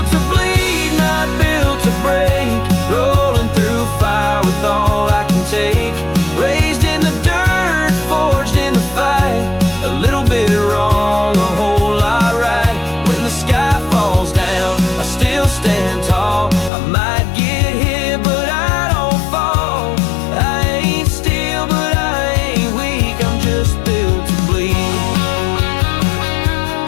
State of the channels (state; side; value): drops out; right; at 16.7 s